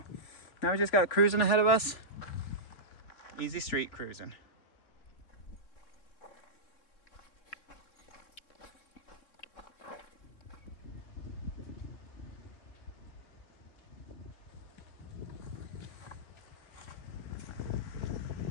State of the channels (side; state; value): right; late; 3.4 ms